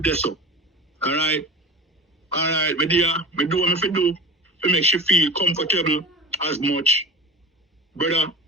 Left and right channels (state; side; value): normal; both; correlation 0.34